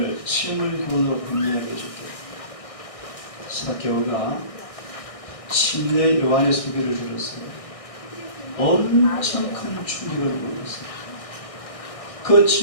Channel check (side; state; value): right; late; 1.6 ms